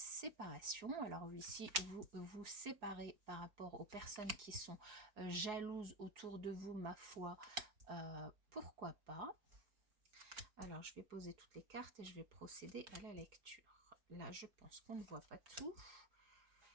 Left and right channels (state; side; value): late; left; 4.4 ms